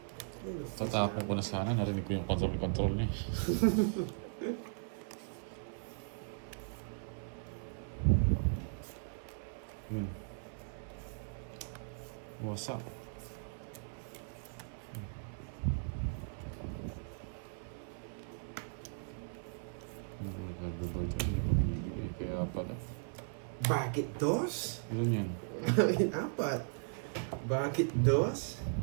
Tatapon ko na sana, narinig ko yung control niya. What's up? Herbivore dyan, hindi ko binibigay. Kaya pala. Bakit dos? Ilan yan? Apat. Bakit dos?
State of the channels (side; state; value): left; silent; 53 dB below the other